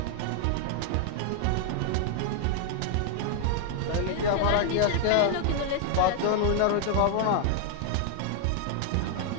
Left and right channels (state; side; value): different; both; correlation 0.00